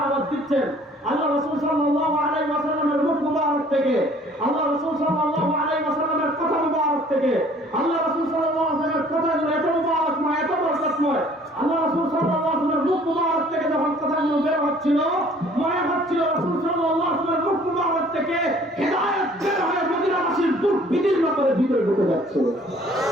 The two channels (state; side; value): normal; both; correlation 0.55